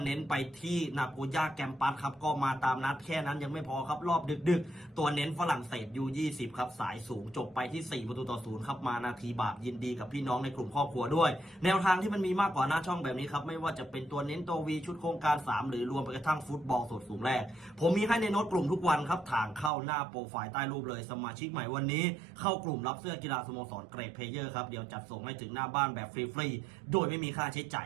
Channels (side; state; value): left; drops out; at 19.7 s